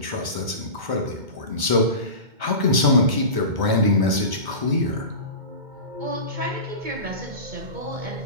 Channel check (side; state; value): left; late; 2.2 ms